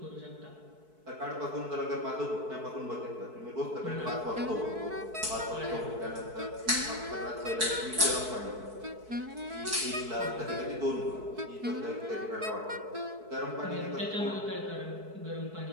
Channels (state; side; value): late; left; 4.6 ms